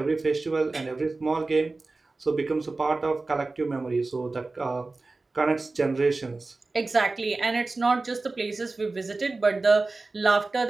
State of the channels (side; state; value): left; quieter; 3.5 dB